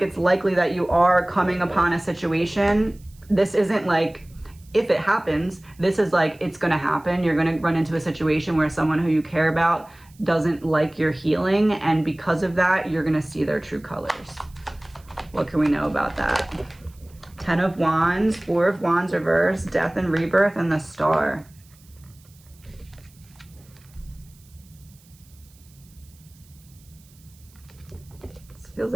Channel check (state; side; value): noise; right; hiss, 28 dB below the sound